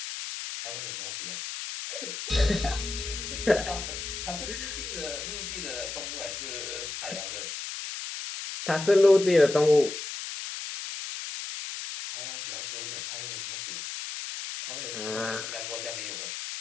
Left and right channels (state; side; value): noise; left; hiss, 7 dB below the sound